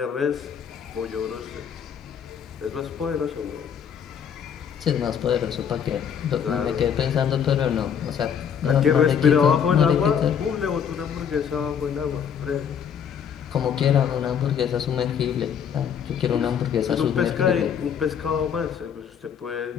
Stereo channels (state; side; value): quieter; right; 7.8 dB